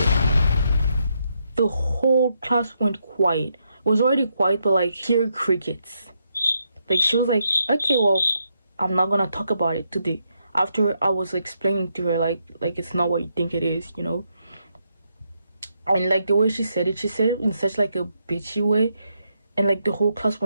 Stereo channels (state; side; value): inverted; both; correlation -0.79